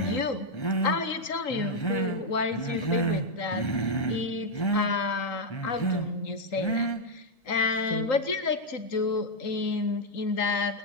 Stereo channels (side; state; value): right; late; 1.3 ms